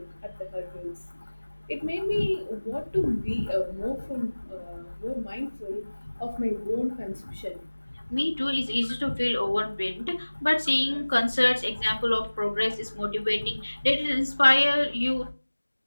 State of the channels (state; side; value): inverted; both; correlation -1.00